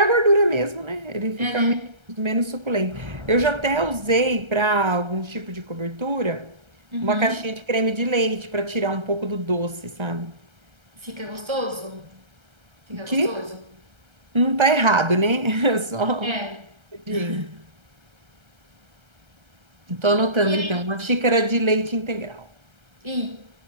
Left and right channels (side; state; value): left; late; 1.3 ms